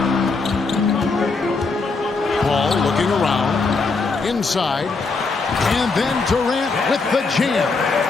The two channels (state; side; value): quieter; right; 4.1 dB